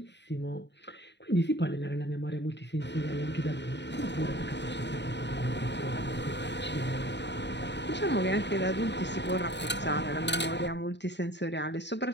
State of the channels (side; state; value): right; late; 0.51 ms